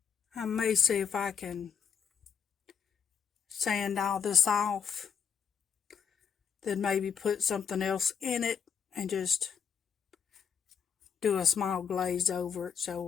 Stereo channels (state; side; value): quieter; right; 7.1 dB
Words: I may see if I can sand all this off, then maybe put something else in it and just do a small glaze over it